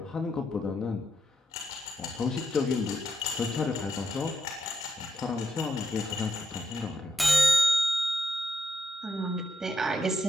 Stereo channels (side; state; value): both; normal; correlation 0.81